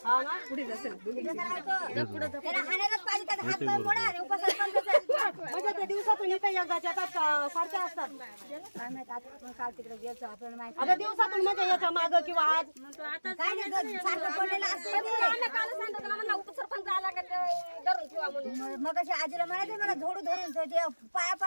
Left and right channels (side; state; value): both; inverted; correlation -1.00